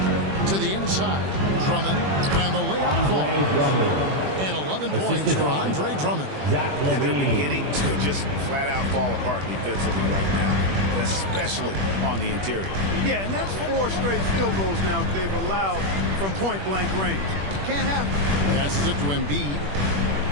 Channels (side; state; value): left; late; 21 ms